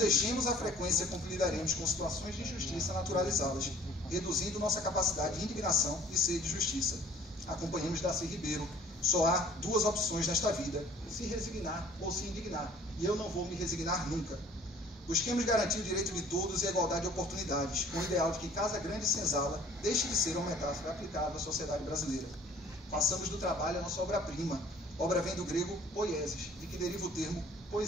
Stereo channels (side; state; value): both; normal; correlation 0.53